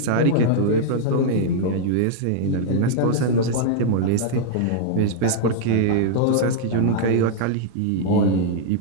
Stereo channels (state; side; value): different; both; correlation -0.01